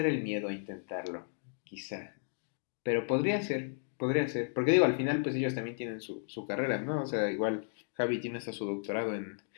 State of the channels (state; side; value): silent; right; digital silence